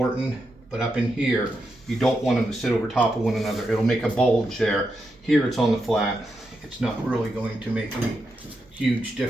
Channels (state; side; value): normal; both; correlation 0.85